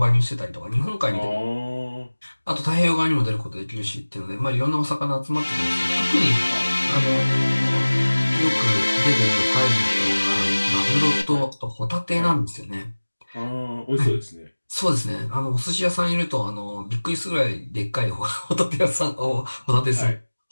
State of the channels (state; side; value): inverted; both; correlation -1.00